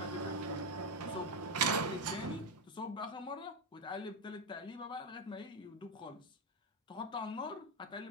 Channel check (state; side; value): normal; both; correlation 0.07